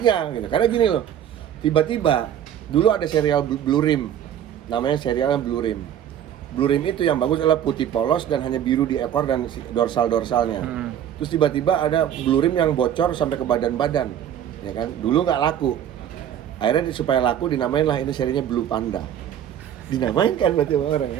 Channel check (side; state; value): left; quieter; 10.1 dB